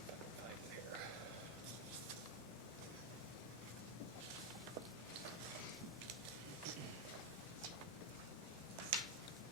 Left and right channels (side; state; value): both; normal; correlation 0.04